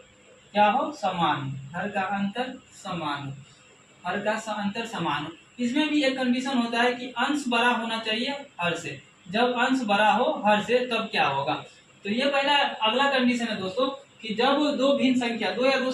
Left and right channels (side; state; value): both; identical; correlation 1.00